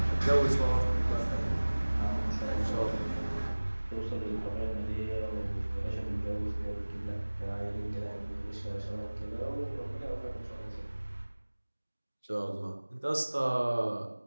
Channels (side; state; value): both; inverted; correlation -1.00